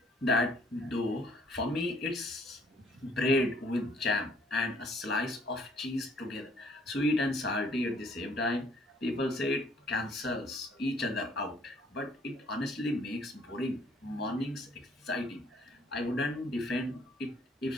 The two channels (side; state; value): both; normal; correlation 0.62